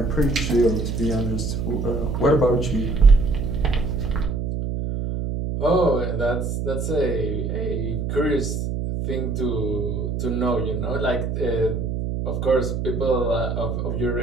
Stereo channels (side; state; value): right; noise; hum, 2 dB below the sound